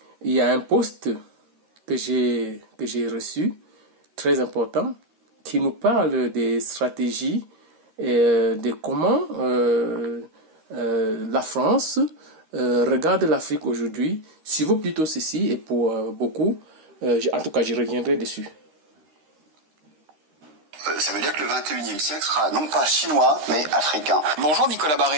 il y a un post que j'ai reçu, très important, qui nous parle des stratégies et de comment la France regarde l'Afrique aujourd'hui. Si vaut plutôt ceci, et pour beaucoup, en tout cas je reviendrai dessus. Ça veut dire que le 21e siècle sera non pas chinois, mais africain. Bonjour Nicolas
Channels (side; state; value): left; late; 13 ms